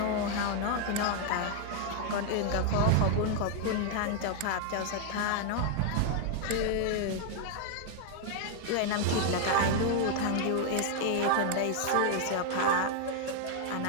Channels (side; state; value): both; different; correlation 0.00